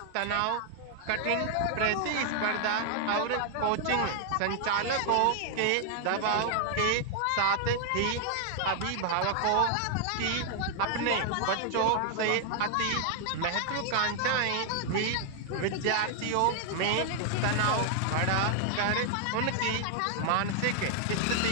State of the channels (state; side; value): different; both; correlation 0.00